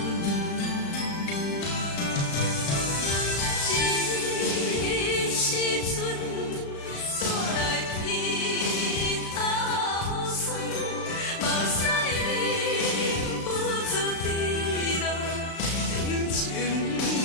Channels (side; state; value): right; late; 35 ms